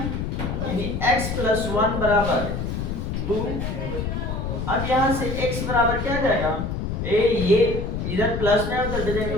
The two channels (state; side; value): noise; left; rumble, 3 dB below the sound